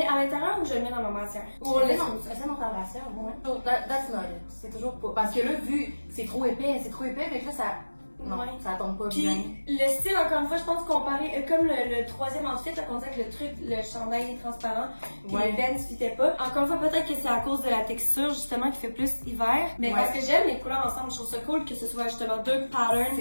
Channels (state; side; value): inverted; both; correlation -1.00